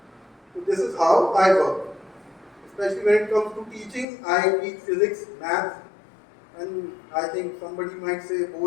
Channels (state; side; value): drops out; right; at 4.0 s